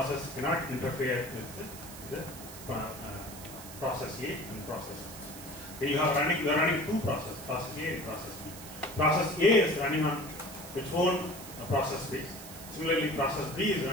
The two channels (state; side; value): noise; right; hiss, 14 dB below the sound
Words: cannot interfere with the process A and process B. Okay, you are running two processes, process A and process B. Process A is running on its own process base. Similarly, process B is